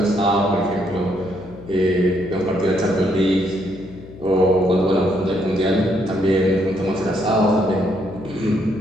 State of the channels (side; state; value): left; noise; hum, 17 dB below the sound